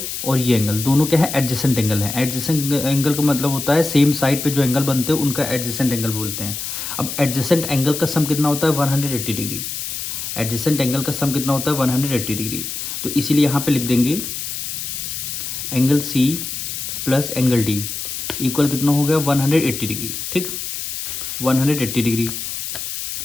और ये एंगल दोनों क्या है एडजेसेंट एंगल है। एडजेसेंट एंगल का मतलब होता है सेम साइड पे जो एंगल बनते हैं उनका एडजेसेंट एंगल बोलते हैं। अब एडजेसेंट एंगल का सम कितना होता है 180 डिग्री। एडजेसेंट एंगल का सम कितना होता है 180 डिग्री। तो इसीलिए यहाँ पे लिख देंगे angle C plus angle D equal कितना हो गया 180 डिग्री। ठीक, 180 डिग्री।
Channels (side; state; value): left; noise; hiss, 5 dB below the sound